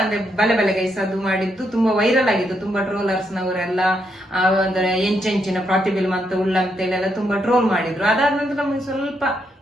ಬಲೆ ಬಲೆ ಗೈಸ್ ಅದು ಮಾಡಿದ್ದು ತುಂಬಾ ವೈರಲ್ ಆಗಿತ್ತು. ತುಂಬಾ ಟ್ರೋಲರ್ಸ್ ನವರೆಲ್ಲ ಅಂದ್ರೆ ಎಂಚೆಂಚಿನ ಪ್ರತಿಬಿಲ್ ಅಂತ ಉಳ್ಳಂತೇಳಿ ಎಲ್ಲ ತುಂಬಾ ಟ್ರೋಲ್ ಮಾಡಿದ್ರು. ಅದಾದ ನಂತರ ನಮಗೆ ಸ್ವಲ್ಪ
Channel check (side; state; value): both; normal; correlation 0.78